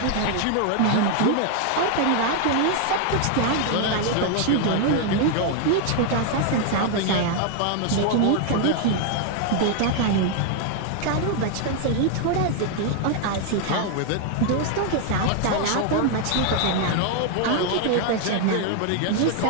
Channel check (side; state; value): both; different; correlation 0.00